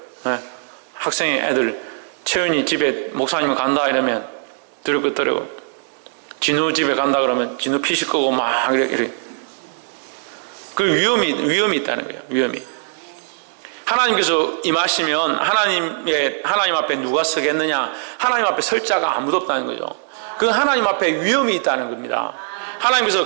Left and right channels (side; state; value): left; silent; digital silence